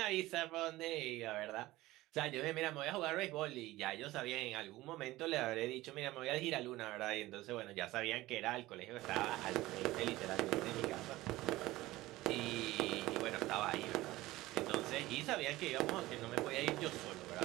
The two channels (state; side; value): quieter; left; 17.8 dB